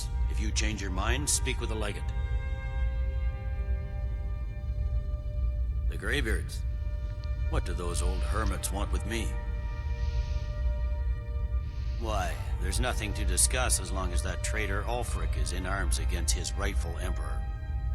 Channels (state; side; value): identical; both; correlation 1.00